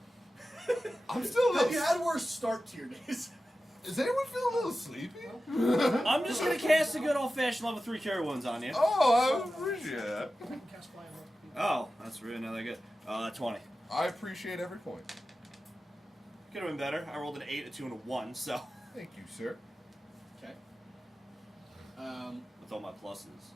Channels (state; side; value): normal; both; correlation 0.94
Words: I'm still a Have little... you had worse start to your days? Does anyone feel a little sleepy? I'm just gonna cast a good old-fashioned level 3 cure wounds on you. Oh, I appreciate that. Oh, that's really not that good. 20. I appreciate every point. Could have been better. I rolled an 8, a 2, and a 1, so. Thank you, sir. Okay. With all my pluses,